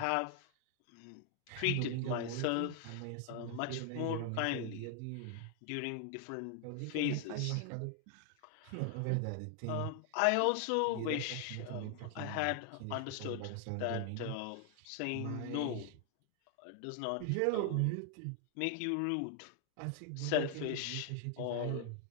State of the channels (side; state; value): both; different; correlation 0.00